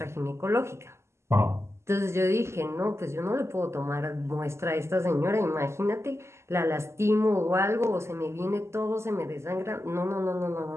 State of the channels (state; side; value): late; left; 0.13 ms